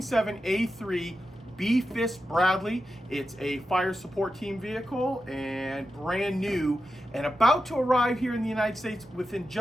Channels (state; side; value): normal; both; correlation 0.90